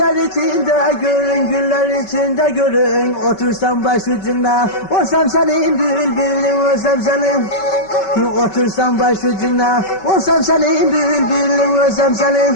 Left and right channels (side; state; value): right; late; 5.3 ms